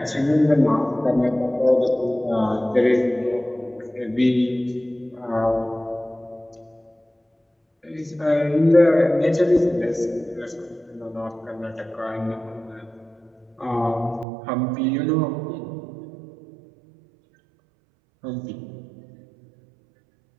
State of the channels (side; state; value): left; drops out; at 14.2 s